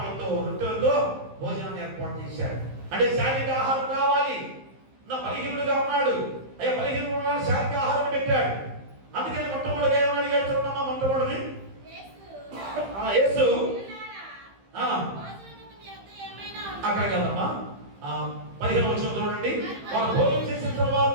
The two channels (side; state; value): left; late; 15 ms